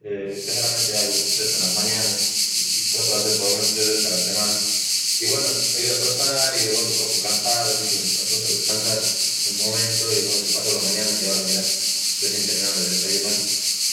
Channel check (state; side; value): identical; both; correlation 1.00